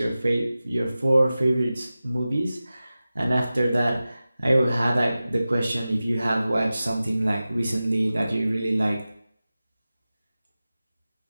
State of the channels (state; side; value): inverted; both; correlation -0.95